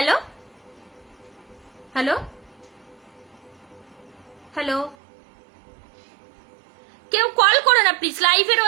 হ্যালো হ্যালো, কেউ কল করো না প্লিজ, লাইভে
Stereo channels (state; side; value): drops out; left; at 5.0 s